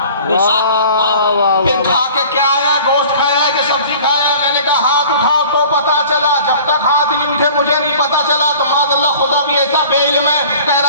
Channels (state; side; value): inverted; both; correlation -0.46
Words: پھر کھا کے کیا آیا، گوشت کھایا ہے کہ سبزی کھایا ہے۔ میں نے کہا ہاتھ اٹھاؤ تو پتا چلا، جب تک ہاتھ نہیں اٹھے مجھے نہیں پتا چلا۔ تو معاذ اللہ خدا بھی ایسا بے علم ہے، کہہ